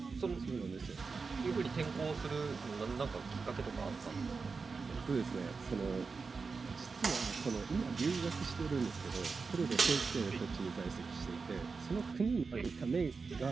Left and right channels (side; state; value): left; quieter; 4.7 dB